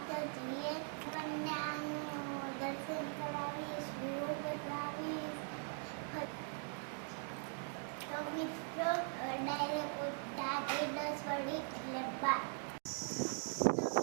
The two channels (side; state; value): left; silent; 50 dB below the other